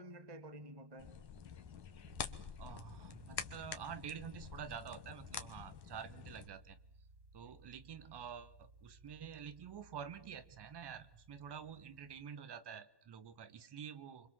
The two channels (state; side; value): late; left; 1.1 ms